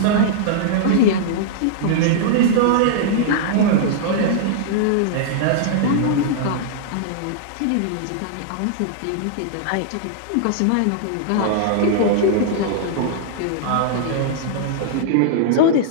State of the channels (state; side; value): different; both; correlation -0.01